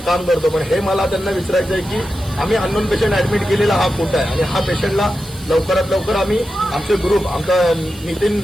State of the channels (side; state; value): right; noise; hiss, 21 dB below the sound